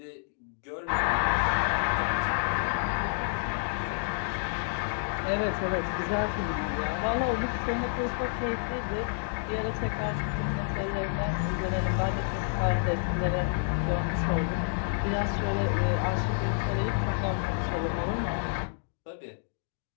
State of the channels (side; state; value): right; silent; digital silence